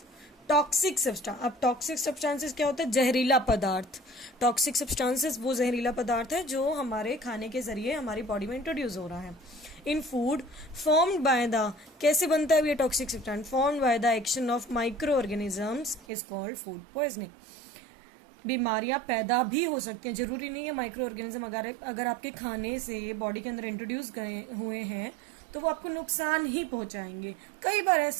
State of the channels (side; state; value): left; drops out; at 16.1 s